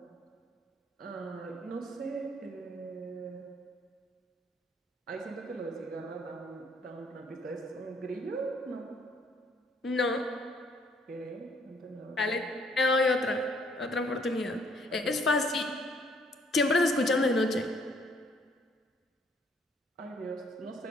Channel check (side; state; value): both; normal; correlation 0.64